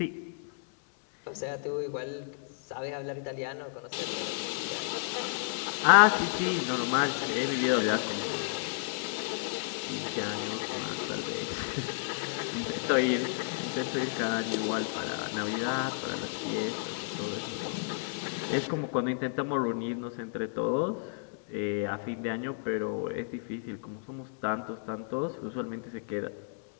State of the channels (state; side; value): silent; right; digital silence